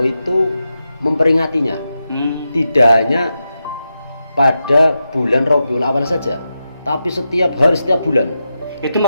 itu memperingatinya. Tidak hanya pada bulan Rabiul Awal saja, tapi setiap hari, setiap bulan. Itu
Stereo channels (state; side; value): inverted; both; correlation -0.89